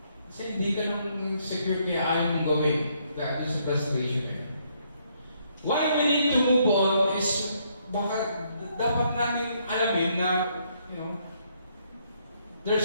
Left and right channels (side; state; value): both; inverted; correlation -0.71